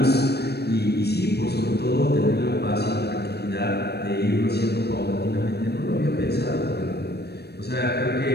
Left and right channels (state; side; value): late; right; 0.47 ms